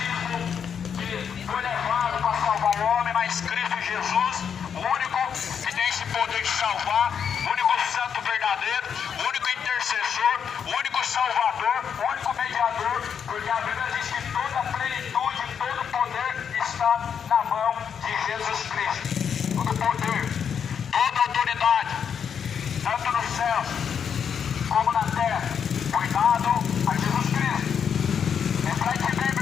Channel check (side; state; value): right; quieter; 7.5 dB